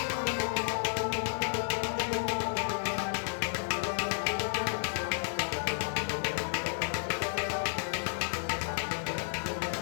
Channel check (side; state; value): right; silent; digital silence